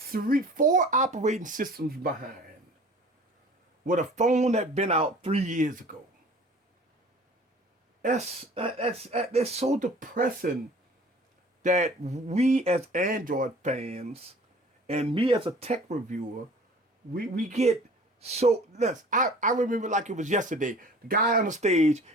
operating systems behind with a phone that been out 3 years ago. That's so depressing that we as Android fans and me as a tech reviewer, we get so less. I remember like it was yesterday. The guy on the stage,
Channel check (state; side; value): normal; both; correlation 0.47